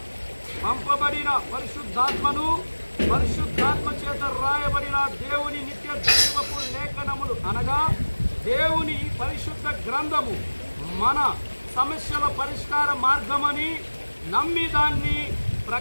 పంపబడిన పరిశుద్ధాత్మ చేత రాయబడిన దేవుని నిత్య జీవపు లేఖనములు అనగా దేవుని పరిశుద్ధ గ్రంథము మన సమస్యల పరిష్కార మార్గమని నమ్మి దాన్ని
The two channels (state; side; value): inverted; both; correlation -1.00